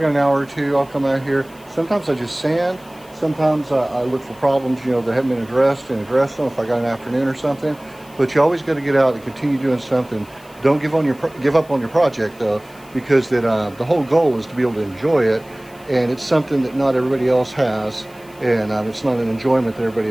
an hour or two, I'll come out here. Sometimes I just sand. Sometimes I look for problems that haven't been addressed and address them if I got an afternoon or something. But you always got to get out and continue doing something. Don't give up on your project though, because the whole goal is to be able to enjoy it, and it's something that not everybody else has, and it's not an enjoyment that everybody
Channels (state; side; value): noise; left; hiss, 26 dB below the sound